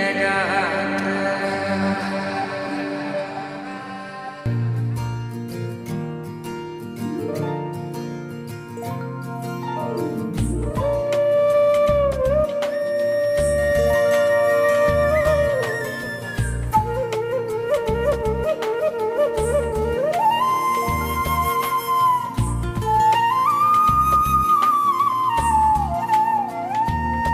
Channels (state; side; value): identical; both; correlation 1.00